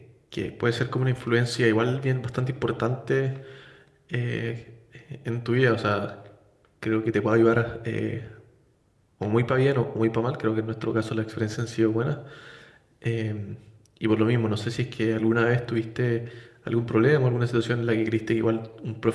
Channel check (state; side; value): identical; both; correlation 1.00